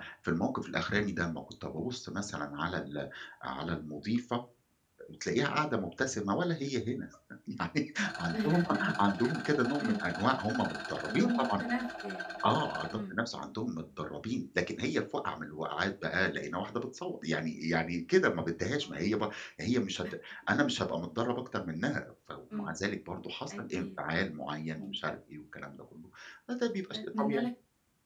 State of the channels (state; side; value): identical; both; correlation 1.00